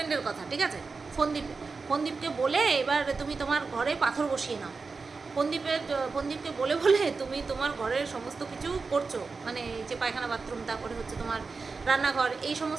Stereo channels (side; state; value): left; quieter; 4.4 dB